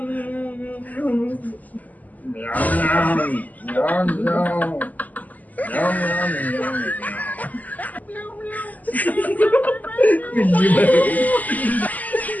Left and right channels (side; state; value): right; late; 0.079 ms